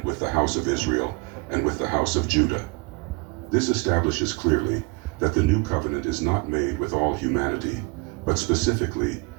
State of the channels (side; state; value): left; quieter; 29.9 dB